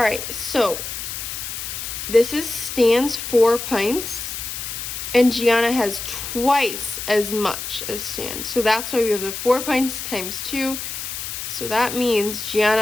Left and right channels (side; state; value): left; noise; hiss, 6 dB below the sound